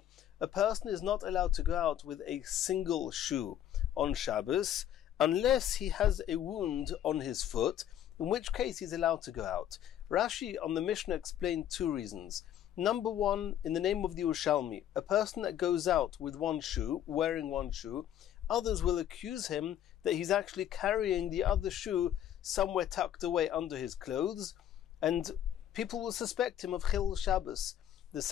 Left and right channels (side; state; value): right; quieter; 10.9 dB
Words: A person is not allowed to go out with a single shoe on Shabbos unless he has a wound on his foot, in which case he's allowed to go out. Rashi on the Mishnah explained two reasons. Number one, in the name of the Yerushalmi, a person that goes out with one shoe, wearing one shoe, others will accuse him that he's actually carrying the other shoe somewhere tucked away under his clothes, and people will suspect him of Chil Shabbos. The